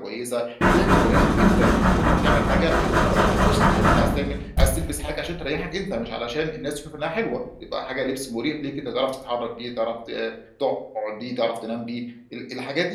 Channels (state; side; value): identical; both; correlation 1.00